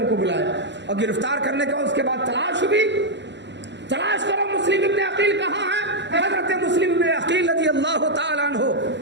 کو بلایا اور گرفتار کرنے کے بعد اس کے بعد تلاش ہوئی. تلاش کرو مسلم ابن عقیل کہاں ہے. حضرت مسلم ابن عقیل رضی اللہ تعالیٰ عنہ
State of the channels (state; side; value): late; left; 0.52 ms